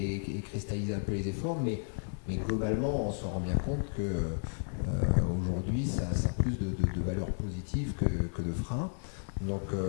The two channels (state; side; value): silent; right; 56 dB below the other